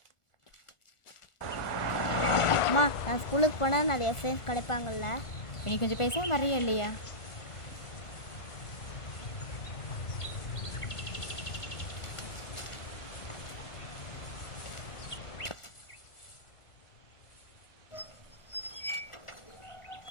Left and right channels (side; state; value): right; late; 1.4 ms